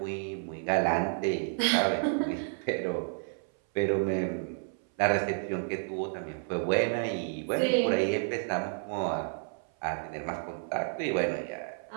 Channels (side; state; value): left; silent; 57 dB below the other